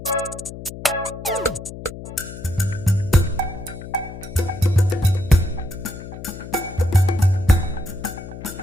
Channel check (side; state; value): left; noise; hum, 12 dB below the sound